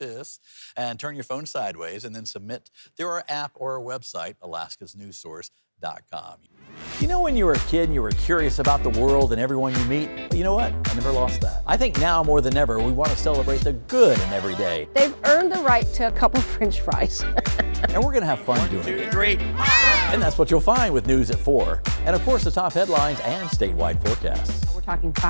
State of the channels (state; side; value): inverted; both; correlation -1.00